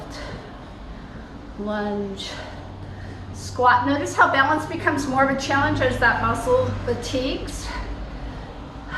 lunge, squat. Notice how balance becomes more of a challenge as that muscle fatigues.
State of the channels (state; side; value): identical; both; correlation 1.00